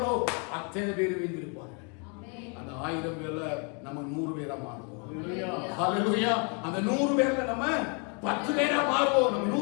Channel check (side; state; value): right; quieter; 36.3 dB